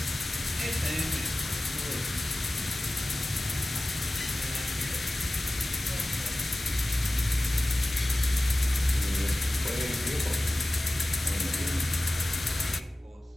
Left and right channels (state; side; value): normal; both; correlation 0.97